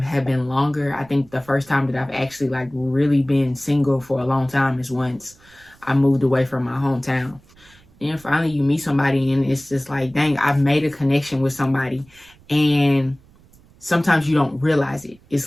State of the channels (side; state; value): right; noise; rumble, 28 dB below the sound